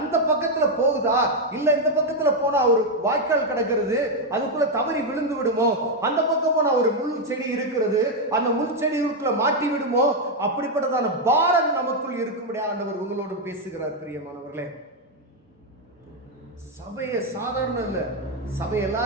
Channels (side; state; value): both; normal; correlation 0.03